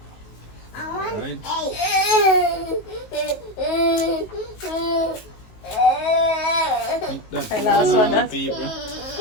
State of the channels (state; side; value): late; right; 19 ms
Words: Right. That's Okay, last one, that. people.